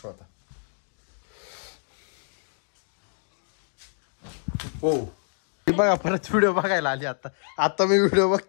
होता. हो बघा परत व्हिडिओ बघायला आली. आता मी व्हिडिओ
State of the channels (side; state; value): right; silent; digital silence